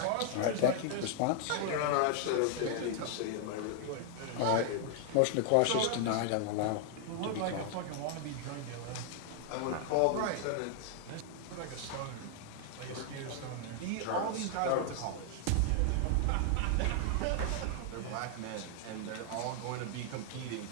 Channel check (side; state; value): both; different; correlation 0.00